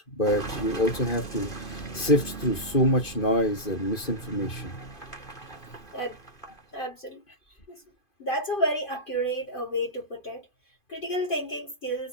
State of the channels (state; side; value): late; right; 2.5 ms